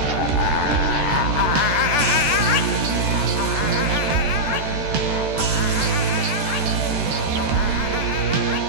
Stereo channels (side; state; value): left; late; 14 ms